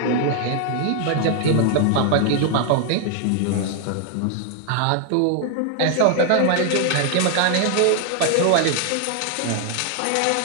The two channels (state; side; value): different; both; correlation 0.00